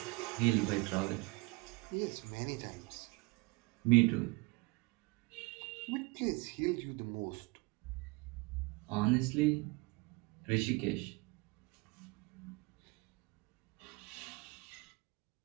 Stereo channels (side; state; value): left; quieter; 25.7 dB